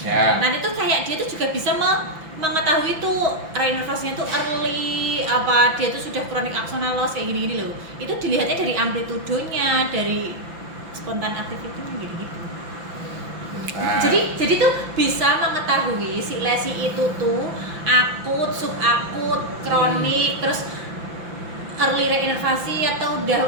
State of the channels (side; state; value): left; late; 5.9 ms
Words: Nanti tuh kayak dia tuh juga bisa mengetahui tuh reinervasinya tuh early apa dia tuh sudah kronik axonal loss kayak gini-gini loh. Itu dilihatnya dari amplitudonya, dari spontan activity-nya gitu-gitu. Nah, Jadi tuh bisa mengetahui si lesi itu tuh akut, subakut, kronik, terus early reinervasi atau